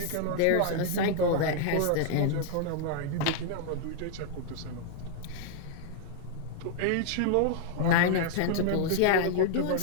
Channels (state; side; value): different; both; correlation 0.00